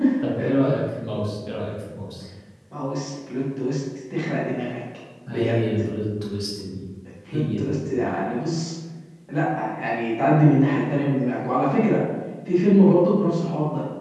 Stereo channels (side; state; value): both; identical; correlation 1.00